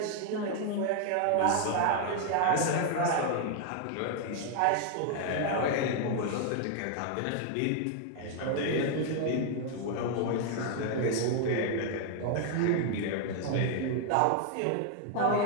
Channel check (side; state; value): both; different; correlation 0.00